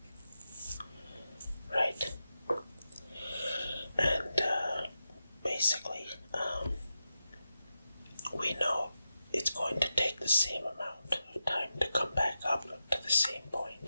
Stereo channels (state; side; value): inverted; both; correlation -0.89